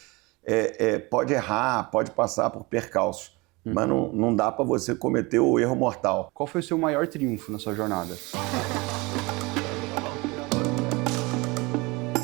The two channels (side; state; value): left; quieter; 24.8 dB